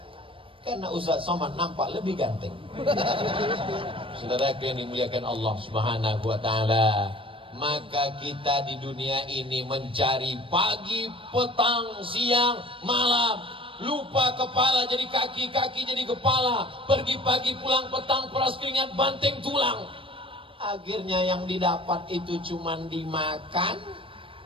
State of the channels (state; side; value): late; left; 0.25 ms